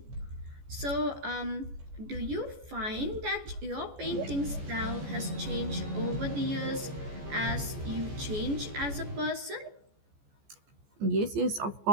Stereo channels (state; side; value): late; left; 14 ms